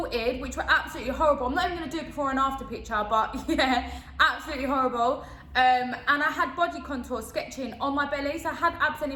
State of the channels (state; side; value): identical; both; correlation 1.00